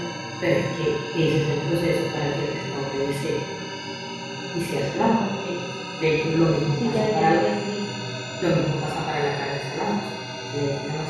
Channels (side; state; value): both; identical; correlation 1.00